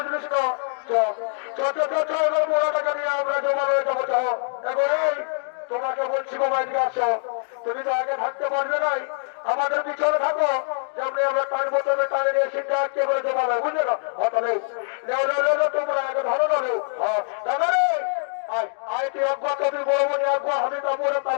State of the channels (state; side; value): silent; right; 63 dB below the other